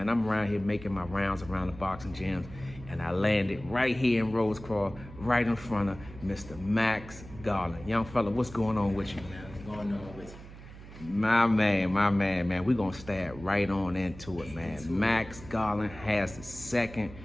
I'm around here making my rounds around the boxing gyms, and I landed right here in Rosecroft, right in front of Mr. Max Garland. Young fella, what's going on with you? What's going on with you? My man. We're going to stab right on into it, man. Max Garland has the second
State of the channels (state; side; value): noise; right; hum, 16 dB below the sound